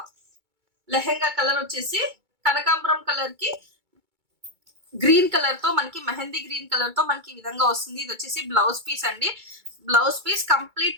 లెహెంగా కలర్ వచ్చేసి కనకాంబరం కలర్ కి గ్రీన్ కలర్ తో మనకి మెహందీ గ్రీన్ కలర్ తో మనకి ఈ విధంగా వస్తుంది. ఇది వచ్చేసి బ్లౌజ్ పీస్ అండి. బ్లౌజ్ పీస్ కంప్లీట్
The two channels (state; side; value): late; left; 2.3 ms